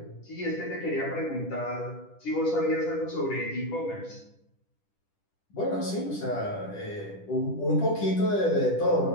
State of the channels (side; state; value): right; late; 10 ms